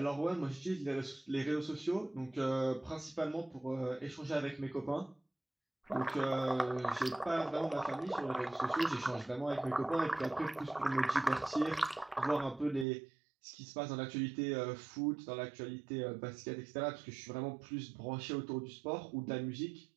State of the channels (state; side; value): drops out; left; at 12.9 s